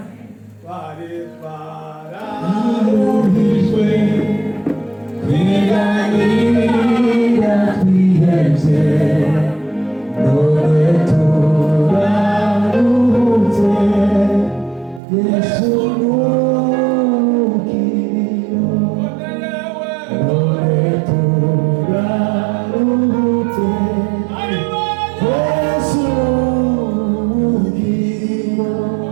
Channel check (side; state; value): left; drops out; at 15.0 s